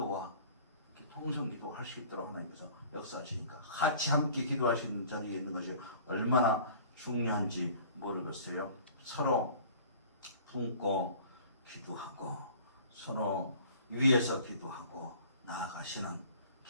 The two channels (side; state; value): both; inverted; correlation -0.48